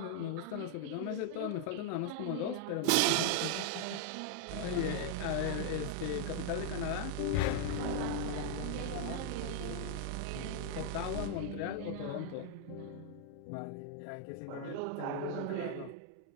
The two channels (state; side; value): different; both; correlation 0.00